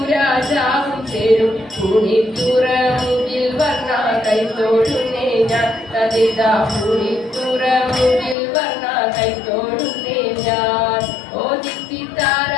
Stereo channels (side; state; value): right; drops out; at 8.3 s